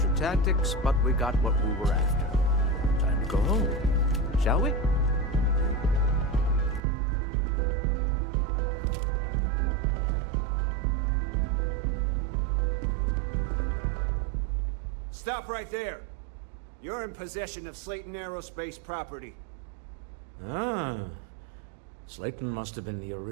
tactics, but we got what we were after. Time to go home, shall we? Stop right there. You're in possession of Slayton Aerospace property. Ah. Slayton must have been the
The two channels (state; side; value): drops out; left; at 6.8 s